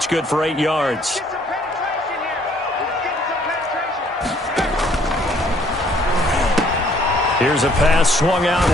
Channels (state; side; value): normal; both; correlation 0.62